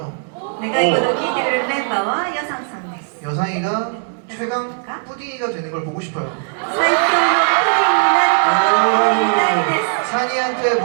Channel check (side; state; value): left; silent; 64 dB below the other